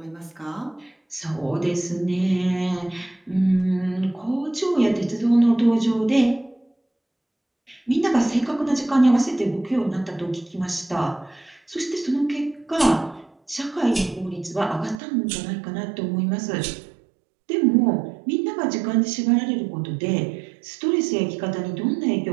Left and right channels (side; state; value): left; drops out; at 15.0 s